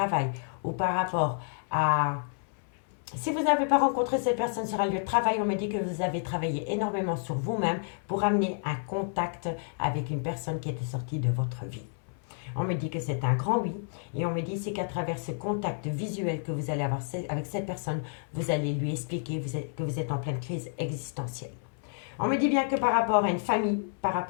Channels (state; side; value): silent; right; 58 dB below the other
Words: ou par rapport à Si vous n'avez pas rencontré cette personne sur un lieu de travail, on me dit que vous avez travaillé énormément sur vous-même pour amener un contact avec une personne qui était sortie de votre vie. On me dit que c'est un grand oui. Et on me dit c'est qu'à travers ce contact visuel que vous allez avoir avec cette personne, vous allez lui expliquer que vous êtes en pleine crise existentielle. On me dit bien que par rapport à une famille, par